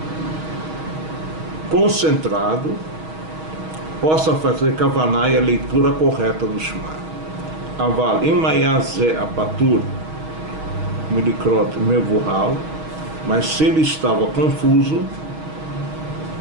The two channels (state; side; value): late; left; 6.3 ms